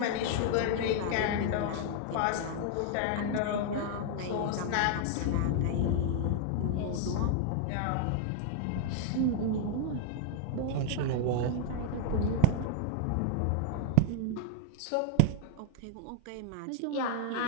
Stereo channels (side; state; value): both; different; correlation 0.00